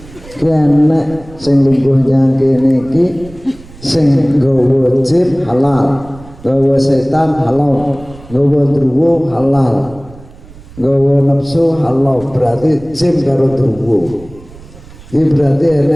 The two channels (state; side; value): noise; right; rumble, 20 dB below the sound